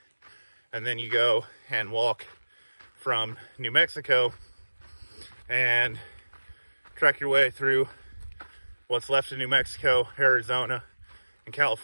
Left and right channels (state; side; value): inverted; both; correlation -1.00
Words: and then you go and walk from New Mexico and trek your way through what's left of New Mexico, Arizona, and